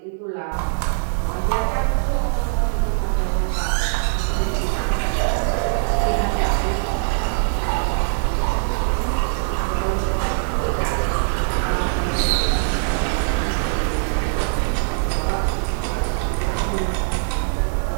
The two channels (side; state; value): left; silent; digital silence